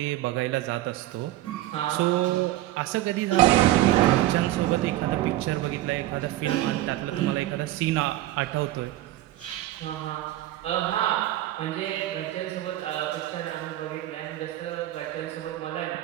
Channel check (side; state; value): left; quieter; 15.2 dB